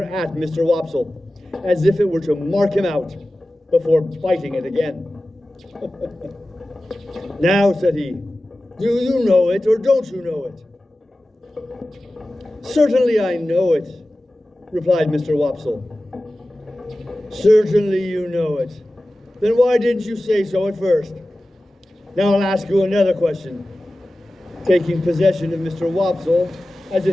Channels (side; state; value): both; normal; correlation 0.95